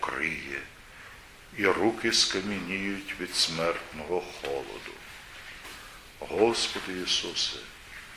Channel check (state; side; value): identical; both; correlation 1.00